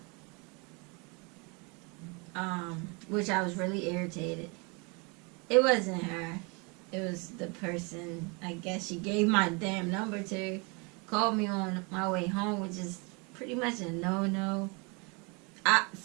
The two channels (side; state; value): left; quieter; 30.9 dB